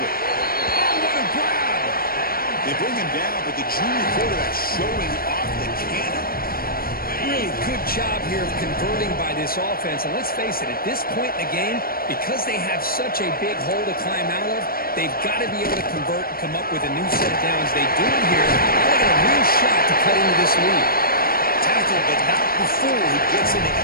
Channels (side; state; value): right; late; 0.43 ms